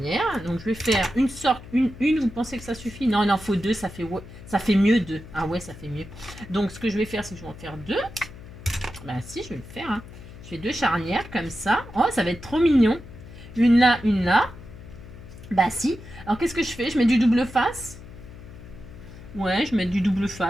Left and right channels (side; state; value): left; noise; hum, 16 dB below the sound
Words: Donc, je vais faire une sorte, une, vous pensez que ça suffit? Non, il en faut deux, ça fait mieux deux. Ah ouais, ça fait mieux. Donc, ce que je vais faire, c'est que je vais en faire deux. Bah si, je vais le faire. Hein. Je fais deux charnières, comme ça. Oh, ça va être trop mignon. Une là, une là. Bah si. Alors, qu'est-ce que je fais? Je mets du double face. Ouais, je mets du double